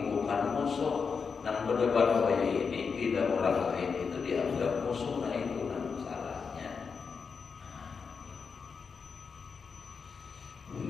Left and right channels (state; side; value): quieter; right; 5.6 dB